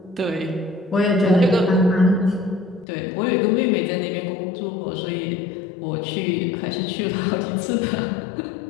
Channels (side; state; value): right; drops out; at 2.9 s